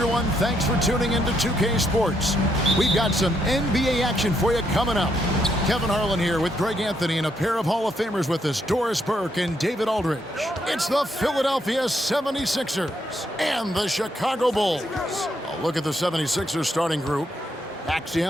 Thanks for tuning into 2K Sports. We've got some NBA action for you coming up. Kevin Harlan here with Greg Anthony and a pair of Hall of Famers with us, Doris Burke and David Aldridge. It's the Philadelphia 76ers and the Chicago Bulls. A look at the 76ers starting group. Maxey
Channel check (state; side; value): normal; both; correlation 0.76